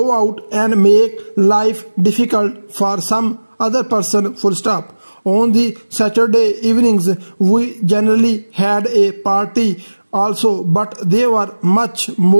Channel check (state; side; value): inverted; both; correlation -1.00